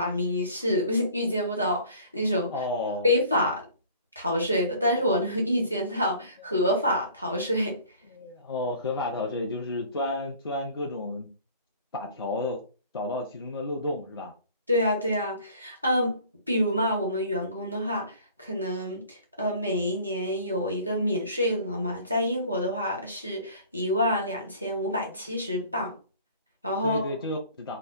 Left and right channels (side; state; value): both; inverted; correlation -0.49